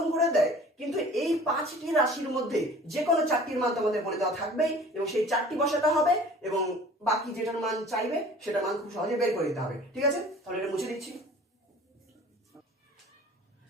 করে দেয়, কিন্তু এই 5টি রাশির মধ্যে যে কোনো 4টির মান তোমাদের বলে দেওয়া থাকবেই এবং সেই 4টি বসাতে হবে এবং বাকি যেটার মান চাইবে সেটার মান খুব সহজে বের করে দিতে হবে। ঠিক আছে, তাহলে এটা মুছে দিচ্ছি।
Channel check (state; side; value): normal; both; correlation 0.46